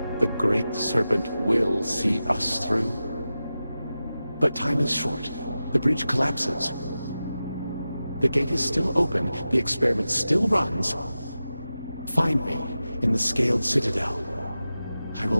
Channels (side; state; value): both; inverted; correlation -0.93